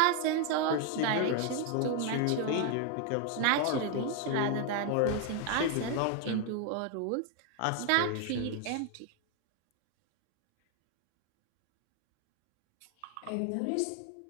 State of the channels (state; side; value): different; both; correlation 0.00